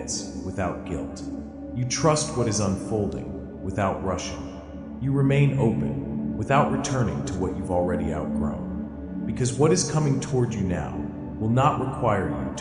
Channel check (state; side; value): identical; both; correlation 1.00